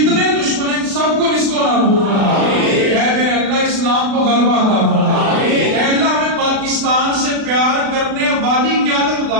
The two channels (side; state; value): left; late; 36 ms